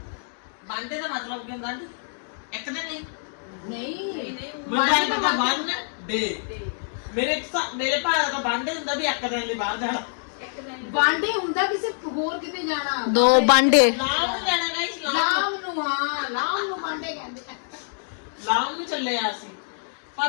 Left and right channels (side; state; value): right; silent; digital silence